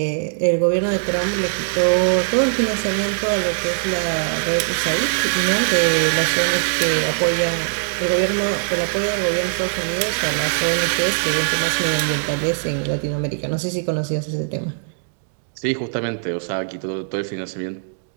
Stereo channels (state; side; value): silent; left; digital silence